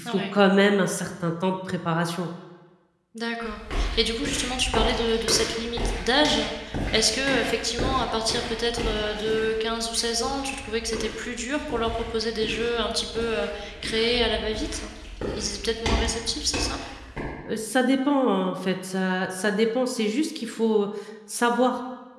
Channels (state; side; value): identical; both; correlation 1.00